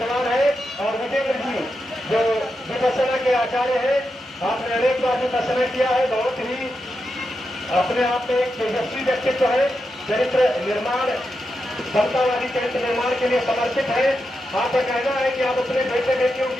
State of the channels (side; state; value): both; normal; correlation 0.87